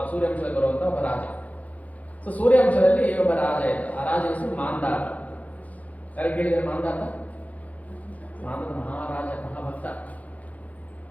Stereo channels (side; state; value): right; late; 0.072 ms